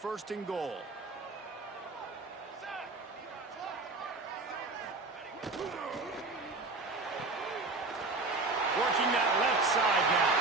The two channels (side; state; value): left; quieter; 3.5 dB